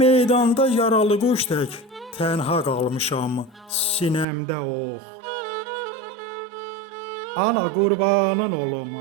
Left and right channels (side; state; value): left; drops out; at 4.2 s